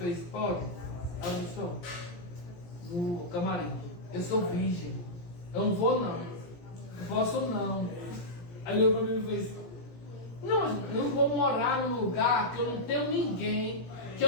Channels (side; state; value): right; late; 17 ms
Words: pode? Aí eu disse, no camarim, eu sou virgem, eu não vou não posso não. Aí ele fez, não, eu não vou morar num lugar que eu não tenho ninguém, que